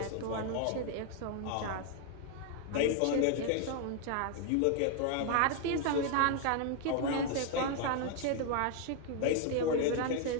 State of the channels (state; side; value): different; both; correlation 0.00